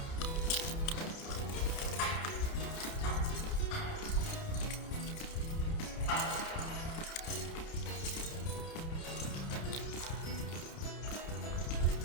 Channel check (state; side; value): late; right; 30 ms